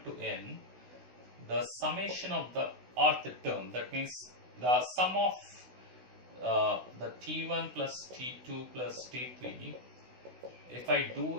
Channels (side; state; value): left; late; 16 ms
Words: to n, the summation of the rth term, that means the sum of the t1 plus t2 plus t3, if I